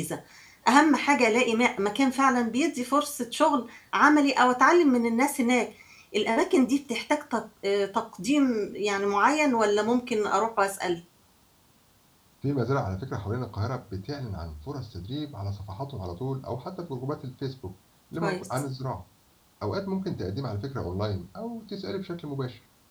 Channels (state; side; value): identical; both; correlation 1.00